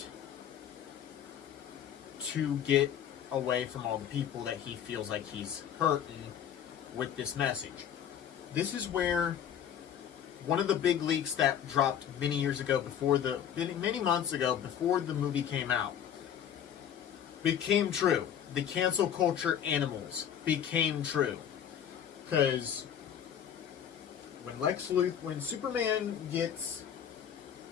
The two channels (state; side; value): quieter; right; 9.3 dB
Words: to get away from all the people that he feels like he's hurting with this message. This is where one of the big leaks that dropped many months ago before the movie came out became true. The cancel culture animals became true. Because when Superman